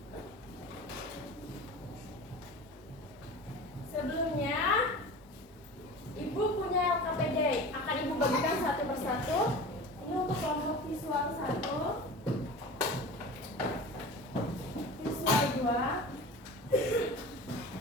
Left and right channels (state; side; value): normal; both; correlation 0.35